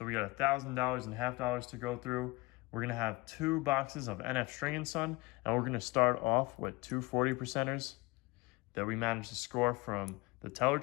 we got $1,000 and half-dollars to go through. We're gonna have 2 boxes of NF String & Son, and we're gonna start off with two 40%ers that we managed to score from the teller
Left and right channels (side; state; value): right; quieter; 23.5 dB